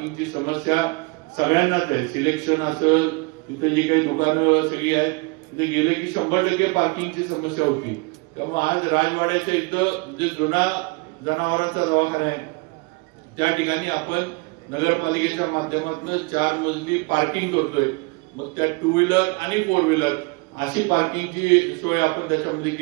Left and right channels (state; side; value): quieter; left; 28.1 dB